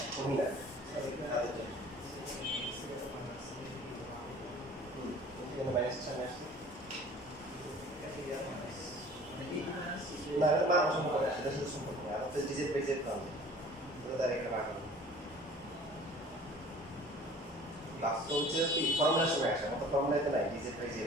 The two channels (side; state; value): both; normal; correlation 0.48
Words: কমই লাগে এখানে মাইনাস সামনে আসছে না এটা মান সম্পর্ক সেটা শুধু সম্পর্ক না আমাদের ডিজিট বাই জেড পাবো এটা তার একটা ভাগ হবে বাস্তব হচ্ছে কি ফর্মুলার সময় আসে আমাদের ফর্মুলাতে নাই ডিজিট বাই জেড